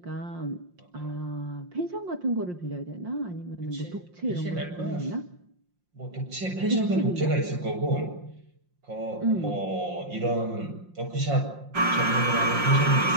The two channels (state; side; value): late; left; 5.6 ms